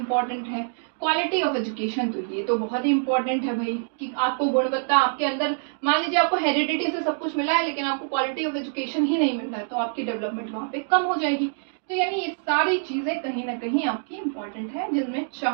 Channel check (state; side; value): silent; left; digital silence